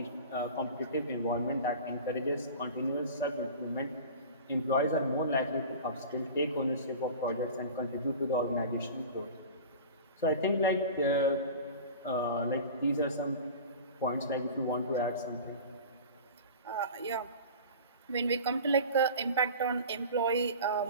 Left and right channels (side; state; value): both; inverted; correlation -0.36